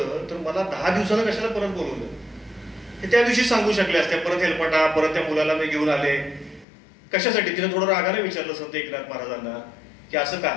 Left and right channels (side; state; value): right; drops out; at 6.7 s